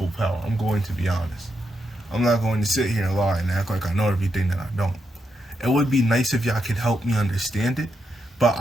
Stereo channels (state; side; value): normal; both; correlation 0.83